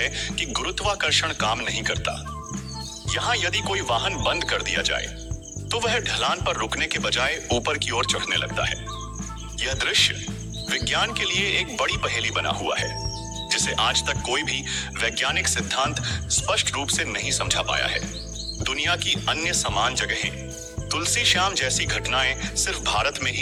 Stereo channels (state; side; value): identical; both; correlation 1.00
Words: कि गुरुत्वाकर्षण काम नहीं करता। यहाँ यदि कोई वाहन बंद कर दिया जाए तो वह ढलान पर रुकने के बजाय ऊपर की ओर चढ़ने लगता है। यह दृश्य विज्ञान के लिए एक बड़ी पहेली बना हुआ है, जिसे आज तक कोई भी वैज्ञानिक सिद्धांत स्पष्ट रूप से नहीं समझा पाया है। दुनिया की अन्य समान जगहें तुलसी श्याम जैसी घटनाएं सिर्फ भारत में